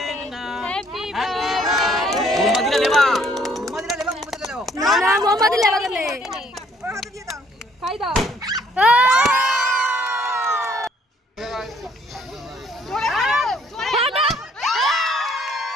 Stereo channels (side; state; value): both; normal; correlation 0.63